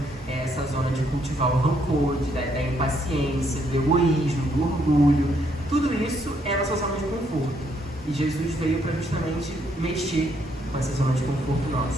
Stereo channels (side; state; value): both; normal; correlation 0.72